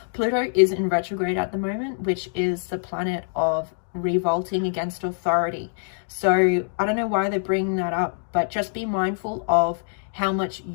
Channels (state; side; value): silent; right; digital silence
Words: Pluto is in retrograde at the moment, which is the planet of revolting against authority. So I don't know why they're bringing that up, but just be mindful of how much